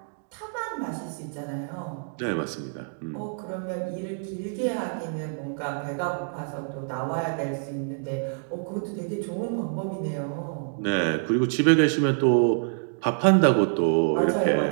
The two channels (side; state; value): left; silent; digital silence